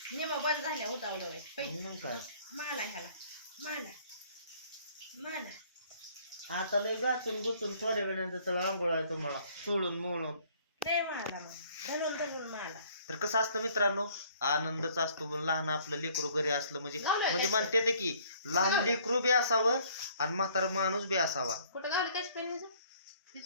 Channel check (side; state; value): both; inverted; correlation -0.59